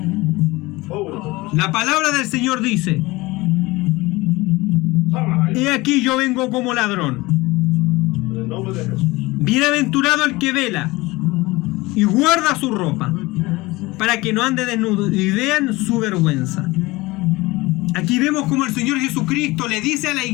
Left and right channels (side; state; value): right; quieter; 21.4 dB